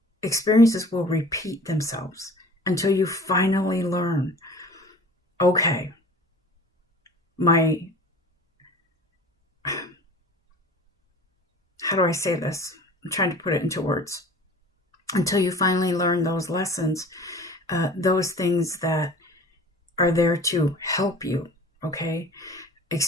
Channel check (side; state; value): both; normal; correlation 0.43